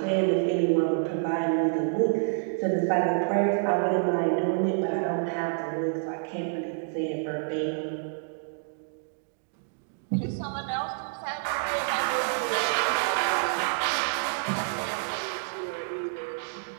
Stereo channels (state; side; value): silent; left; digital silence